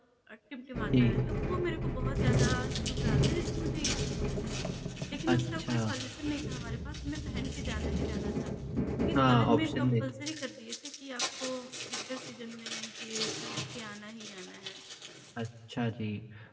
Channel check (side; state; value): both; identical; correlation 1.00